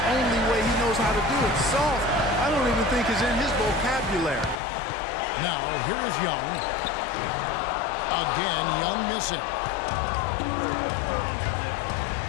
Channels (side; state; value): right; drops out; at 4.5 s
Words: only way he knows how to do it. Soft, I don't even think is in his vocabulary. Now, here is Young. Again, Young missing.